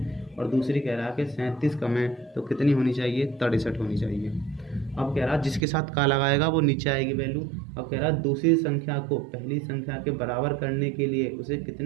और दूसरी कह रहा है कि 37 कम है तो कितनी होनी चाहिए, 63 होनी चाहिए। अब कह रहा जिसके साथ का लगाएगा वो नीचे आएगी वैल्यू। अब कह रहा दूसरी संख्या को पहली संख्या के बराबर करने के लिए उसे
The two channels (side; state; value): left; drops out; at 5.7 s